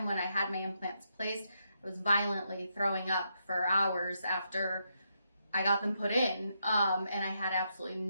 when I had my implants placed, I was violently throwing up for hours after I got them put in, and I had absolutely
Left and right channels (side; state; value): both; inverted; correlation -0.80